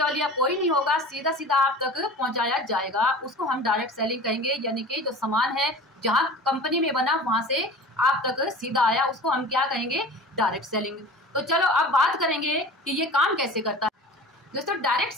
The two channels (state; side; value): normal; both; correlation 0.38